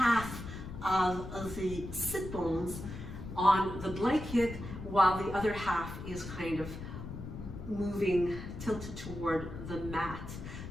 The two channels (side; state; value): left; noise; rumble, 9 dB below the sound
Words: of the sit bones on the blanket while the other half is kind of moving, tilted toward the mat.